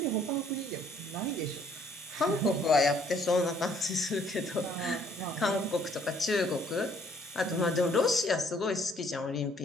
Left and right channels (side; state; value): both; normal; correlation 0.63